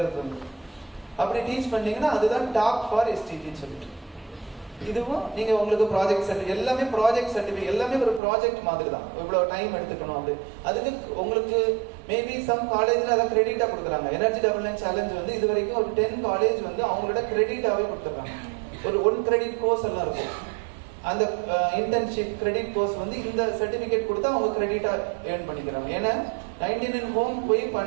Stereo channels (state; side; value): drops out; left; at 8.2 s